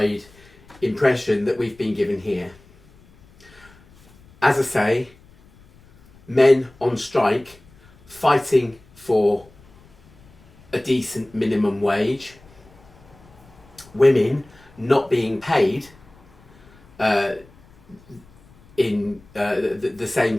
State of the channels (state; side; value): noise; left; rumble, 27 dB below the sound